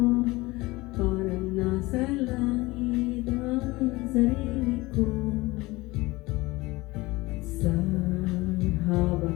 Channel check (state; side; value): quieter; right; 21.2 dB